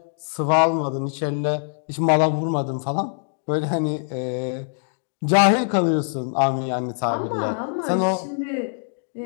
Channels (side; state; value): right; silent; digital silence